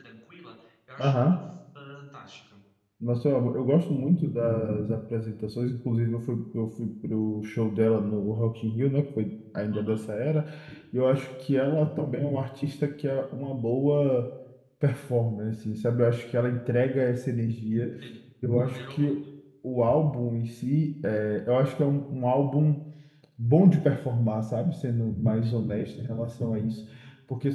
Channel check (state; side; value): identical; both; correlation 1.00